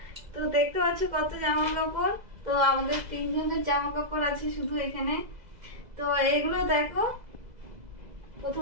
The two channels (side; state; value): left; late; 2.0 ms